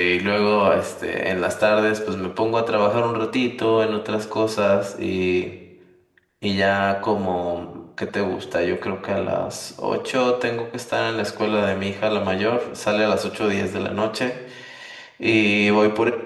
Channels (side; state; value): both; identical; correlation 1.00